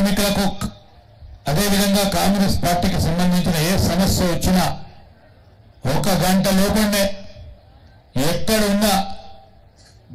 అదేవిధంగా కాంగ్రెస్ పార్టీకి సంబంధించిన ఏ సమస్య వచ్చినా ఒక గంట లోపలనే ఎక్కడున్నా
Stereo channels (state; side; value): identical; both; correlation 1.00